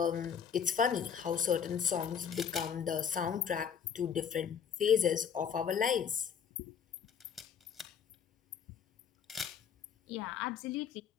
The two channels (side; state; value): right; quieter; 7.5 dB